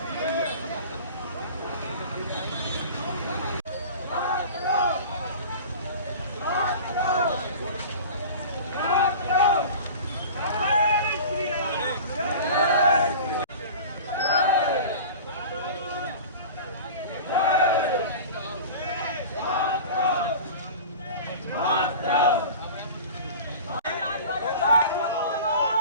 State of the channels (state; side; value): inverted; both; correlation -0.37